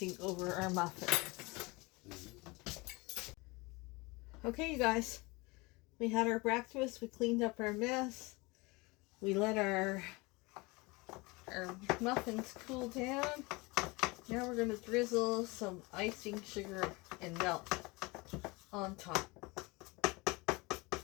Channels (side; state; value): right; quieter; 25.0 dB